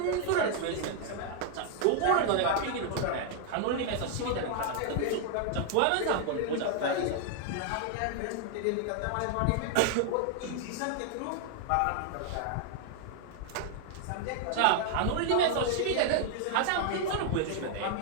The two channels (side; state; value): both; different; correlation 0.00